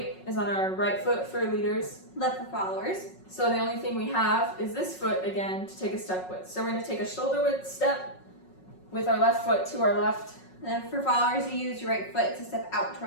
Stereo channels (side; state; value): right; late; 5.4 ms